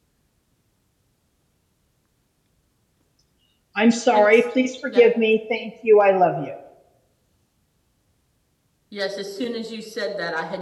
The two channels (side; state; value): both; identical; correlation 1.00